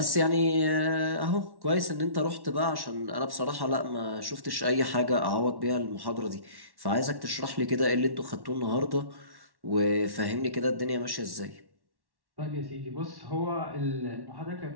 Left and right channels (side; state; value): left; late; 1.1 ms